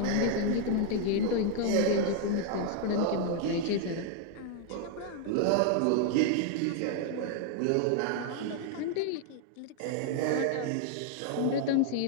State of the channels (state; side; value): different; both; correlation 0.00